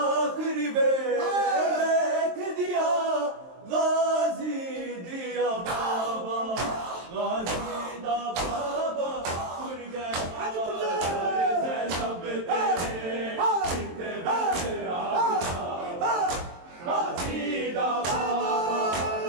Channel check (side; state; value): left; late; 23 ms